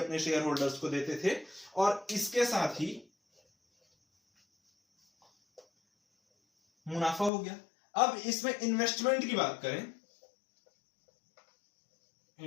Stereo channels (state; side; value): drops out; right; at 7.3 s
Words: शेयर होल्डर्स को देते थे। और इसके साथ ही मुनाफा हो गया। अब इसमें इन्वेस्टमेंट की बात करें,